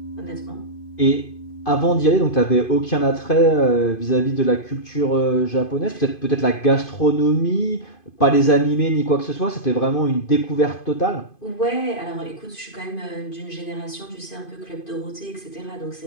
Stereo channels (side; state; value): right; late; 2.5 ms